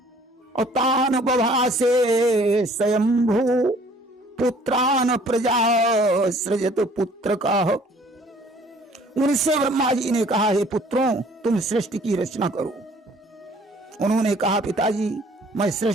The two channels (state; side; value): normal; both; correlation 0.56